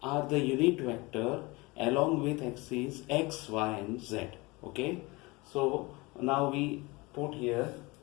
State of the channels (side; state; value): right; quieter; 24.2 dB